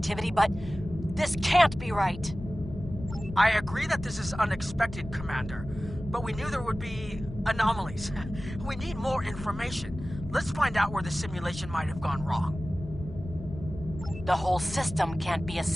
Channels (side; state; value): left; noise; rumble, 11 dB below the sound